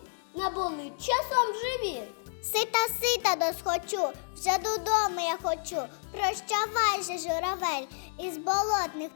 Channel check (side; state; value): right; silent; digital silence